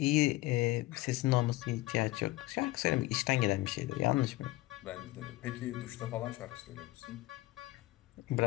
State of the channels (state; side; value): quieter; right; 18.7 dB